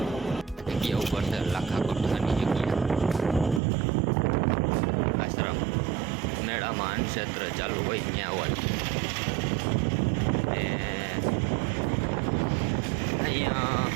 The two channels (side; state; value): left; drops out; at 3.6 s